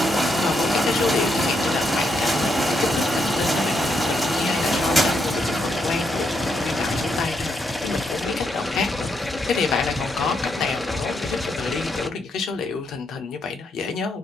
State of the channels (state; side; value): normal; both; correlation 0.79